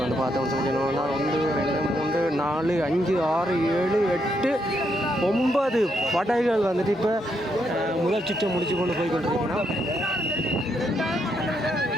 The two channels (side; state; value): both; normal; correlation 0.78